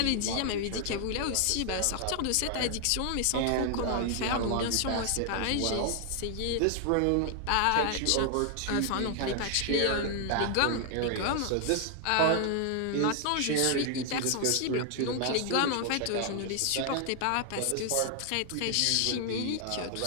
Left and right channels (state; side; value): different; both; correlation 0.00